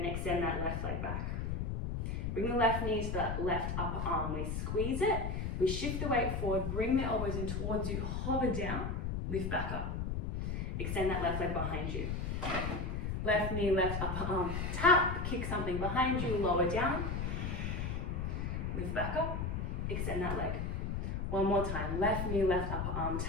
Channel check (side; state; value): left; noise; rumble, 2 dB below the sound